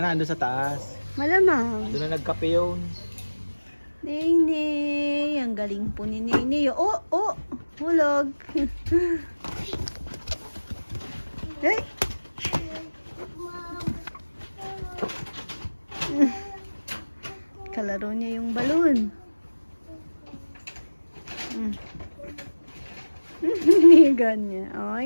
ando sa taas. Malamang. Doon na nagkape yun. Nene, ang galing po ni Nene. Oh, hulog. Ay. Kalaro niya yung balon. Nigan niya.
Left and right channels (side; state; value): both; inverted; correlation -1.00